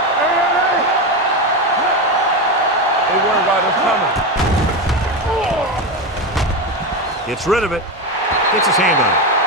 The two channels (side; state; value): both; normal; correlation 0.15